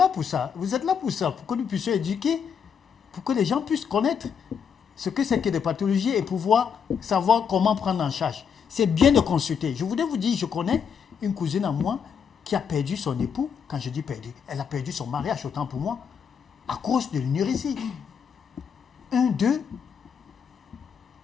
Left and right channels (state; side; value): quieter; right; 7.0 dB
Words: pour ça. Vous êtes là pour ça, pour que nous puissions éduquer, pour que les gens puissent connaître ce que c'est que des pathologies et pouvoir savoir comment prendre en charge. C'est bien de consulter. Je voudrais vous dire, je connais une cousine à moi, qui a perdu son époux. Quand je dis perdu, elle a perdu son mariage, autant pour moi, à cause de l'énurésie. 1, 2,